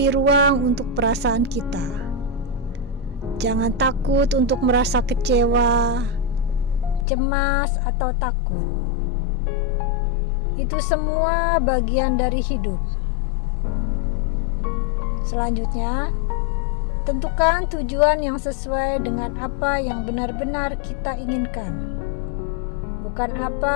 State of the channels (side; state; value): right; drops out; at 7.1 s